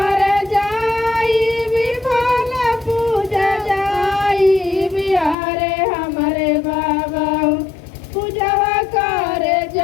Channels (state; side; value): drops out; right; at 5.4 s